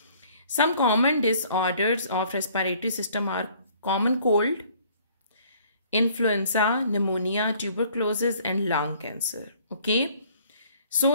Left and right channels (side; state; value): both; inverted; correlation -0.58